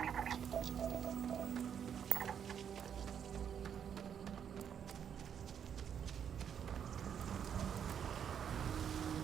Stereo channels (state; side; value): quieter; left; 8.2 dB